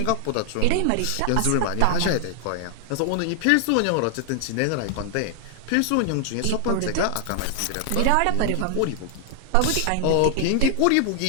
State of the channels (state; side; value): different; both; correlation 0.00